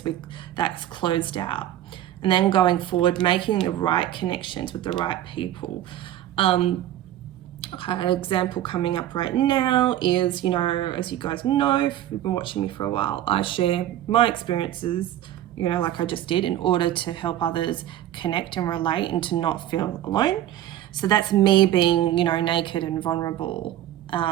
that's closed out. And then going forward, making the right connections with the right people. An example coming up right now is, you know, as you guys know, if you've been watching me for a while, I share my experiences, you know, like I just did, in order to help others connect and relate and to not feel alone. So that's me being, you know, naked and vulnerable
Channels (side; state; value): left; quieter; 12.6 dB